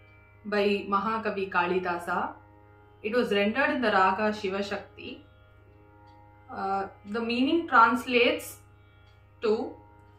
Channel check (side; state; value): both; identical; correlation 1.00